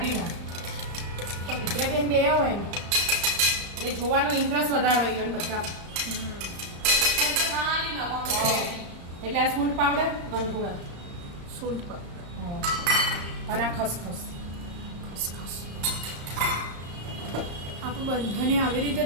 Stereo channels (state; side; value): late; left; 35 ms